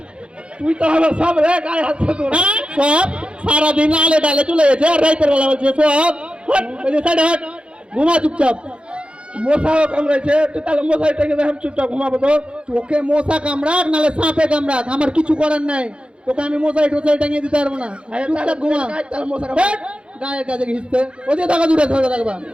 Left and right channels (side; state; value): left; late; 0.057 ms